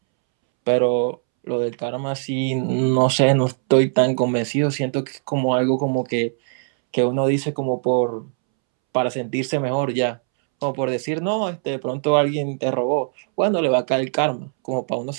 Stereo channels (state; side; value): silent; left; 65 dB below the other